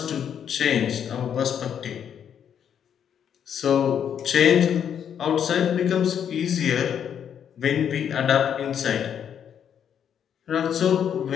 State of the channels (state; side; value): quieter; right; 8.6 dB